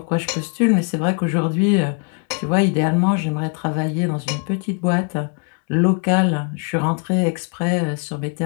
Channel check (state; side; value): quieter; right; 37.5 dB